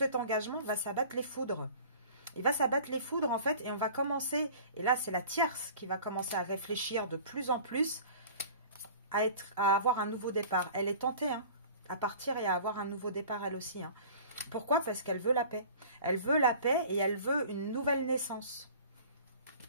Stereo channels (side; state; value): both; inverted; correlation -0.44